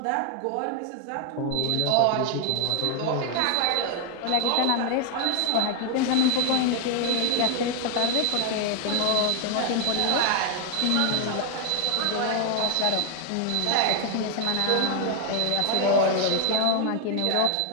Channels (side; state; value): both; different; correlation 0.00